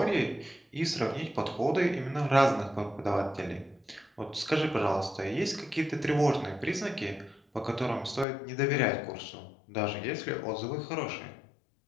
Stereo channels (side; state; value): right; drops out; at 8.2 s